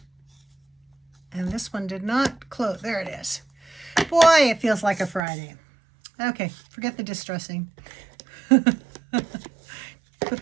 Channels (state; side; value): drops out; left; at 5.2 s